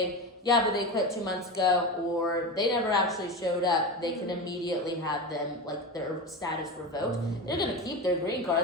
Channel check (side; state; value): both; normal; correlation 0.23